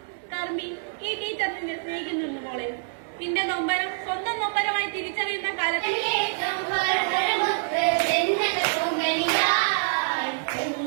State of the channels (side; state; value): left; silent; digital silence